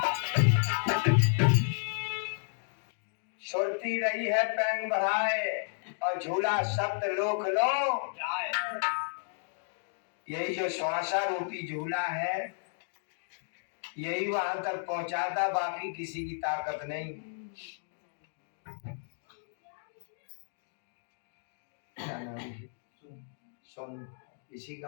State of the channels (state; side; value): silent; right; digital silence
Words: सुरती रही है पैंग बढ़ाए और झूला सप्त लोक लो जाए। यही जो श्वासा रूपी झूला है यही वहां तक पहुंचाता, बाकी किसी की ताकत नहीं। क्या नाम है? सोन इसी